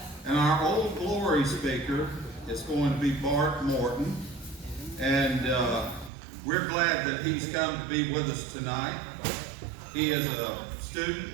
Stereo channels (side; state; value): left; drops out; at 6.1 s